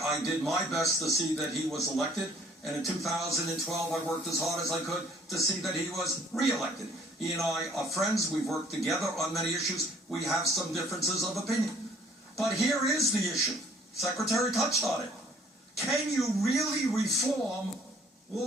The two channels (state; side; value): normal; both; correlation 0.58